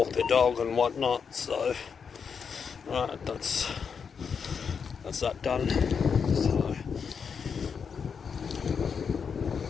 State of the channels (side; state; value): right; quieter; 6.3 dB